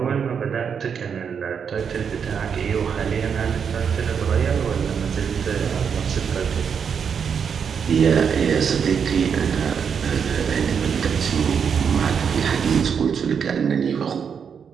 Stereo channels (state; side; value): quieter; left; 6.9 dB